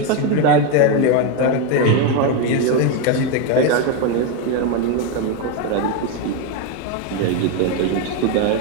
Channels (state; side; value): different; both; correlation 0.03